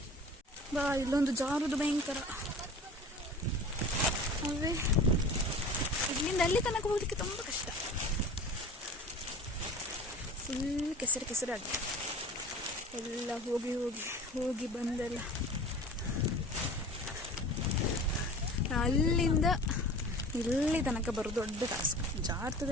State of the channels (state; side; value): normal; both; correlation 0.40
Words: ಬಾ, ಇಲ್ಲೊಂದು ಜಾರುದು ಭಯಂಕರ. ಅವೇ ಇಲ್ಲಿಂದ ಅಲ್ಲಿ ತನಕ ಹೋಗ್ಲಿಕ್ಕೆ ತುಂಬ ಕಷ್ಟ. ಫುಲ್ ಕೆಸರಾಗಿ ಎಲ್ಲ ಹೋಗಿ ಬಂದೆಲ್ಲ. ಅಲ್ಲಿಂದ ಇಲ್ಲಿ ತನಕ ಬರೋದು ದೊಡ್ಡ ಟಾಸ್ಕ್.